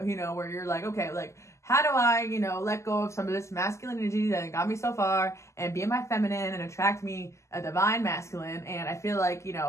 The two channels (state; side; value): late; right; 0.14 ms